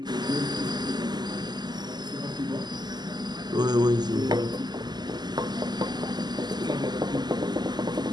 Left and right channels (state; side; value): late; left; 0.21 ms